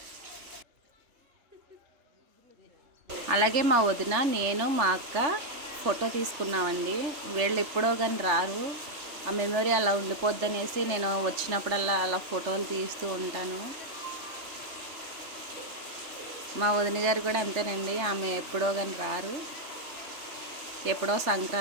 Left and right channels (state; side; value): late; left; 3.4 ms